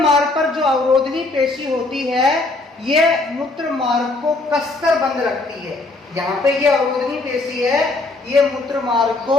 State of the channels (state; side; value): quieter; right; 3.1 dB